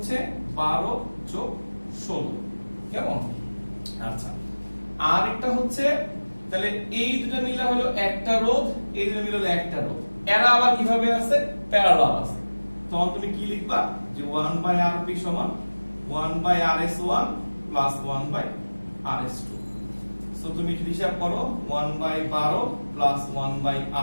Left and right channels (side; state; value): both; inverted; correlation -1.00